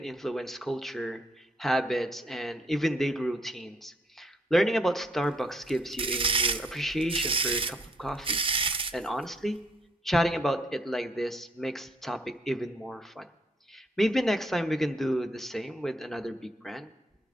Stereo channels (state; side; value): normal; both; correlation 0.69